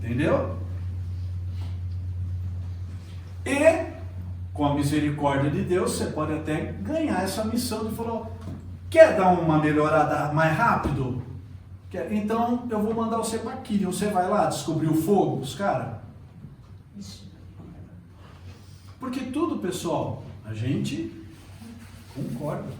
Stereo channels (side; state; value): both; identical; correlation 1.00